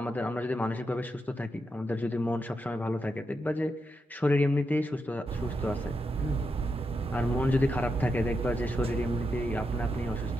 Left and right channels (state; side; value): normal; both; correlation 0.85